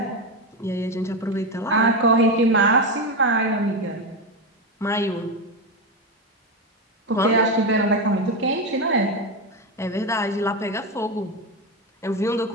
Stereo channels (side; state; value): both; normal; correlation 0.13